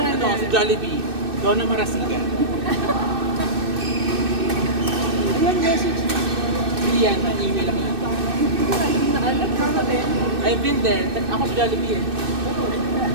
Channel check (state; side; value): late; left; 2.6 ms